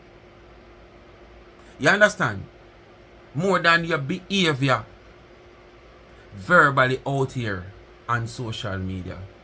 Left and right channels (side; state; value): both; identical; correlation 1.00